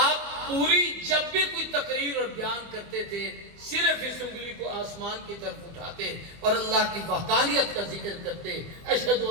پوری جب بھی کوئی تقریر اور بیان کرتے تھے صرف اس انگلی کو آسمان کی طرف اٹھاتے اور اللہ کی وحدانیت کا ذکر کرتے، اشہد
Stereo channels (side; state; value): left; late; 24 ms